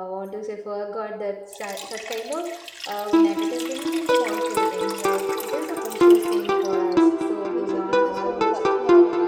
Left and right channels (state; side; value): identical; both; correlation 1.00